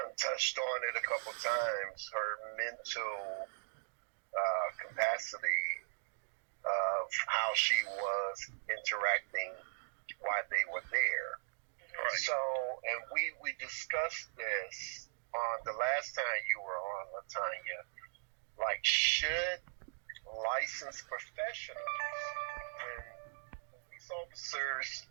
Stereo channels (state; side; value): silent; left; digital silence